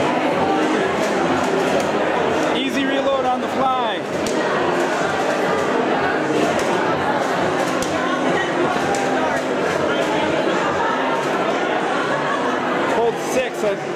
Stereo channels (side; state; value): both; identical; correlation 1.00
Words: On the fly. Hold 6, it